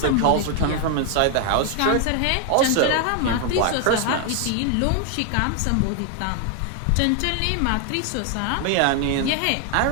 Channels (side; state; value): both; different; correlation 0.01